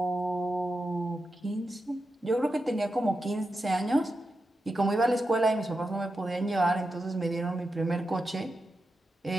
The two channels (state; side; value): normal; both; correlation 0.89